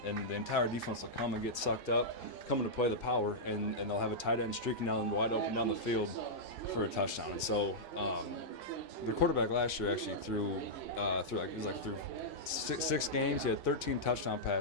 and the entire defense will come and get sucked up, coming to play the power, and they'll have a tight end streaking down wide open down the field for a touchdown. And so the quarterback last year actually threw 6 games. He had 13 touchdown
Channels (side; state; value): both; normal; correlation -0.10